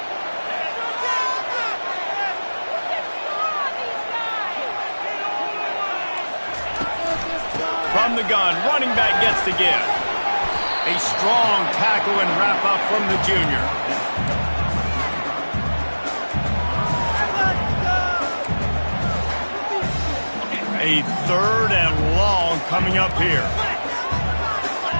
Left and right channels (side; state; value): both; inverted; correlation -1.00